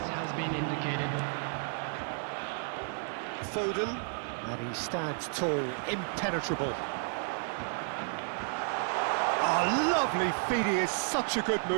has been indicated. Foden. And he stands tall, impenetrable. Oh, lovely feed, he is such a good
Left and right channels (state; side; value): silent; left; 56 dB below the other